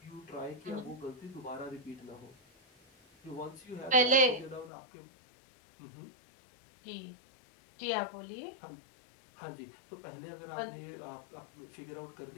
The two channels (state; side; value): drops out; right; at 4.7 s